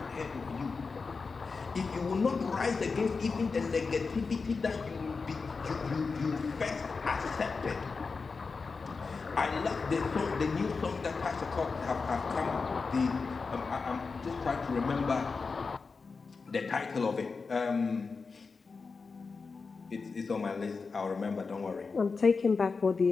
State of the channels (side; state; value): right; quieter; 4.6 dB